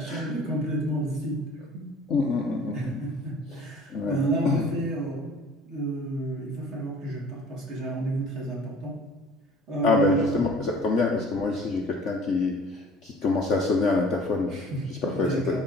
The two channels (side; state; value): both; normal; correlation 0.48